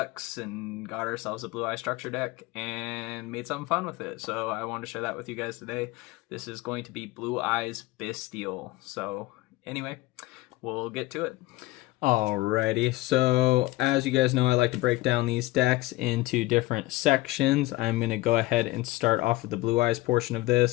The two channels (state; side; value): quieter; right; 19.3 dB